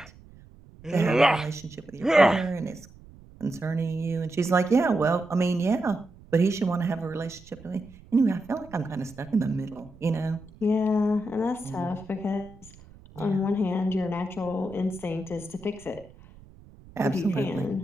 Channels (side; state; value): right; noise; rumble, 22 dB below the sound